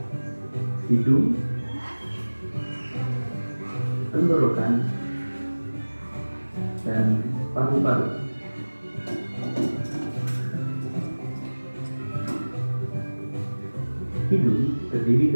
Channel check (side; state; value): both; inverted; correlation -1.00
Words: hidung, tenggorokan, dan paru-paru. Hidung terdiri